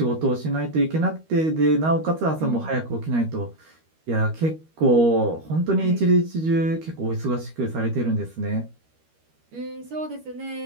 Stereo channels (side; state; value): left; late; 13 ms